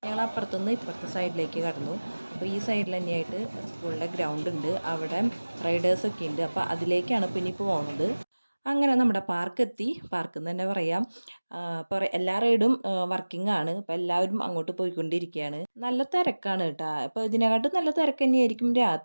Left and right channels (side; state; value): both; inverted; correlation -1.00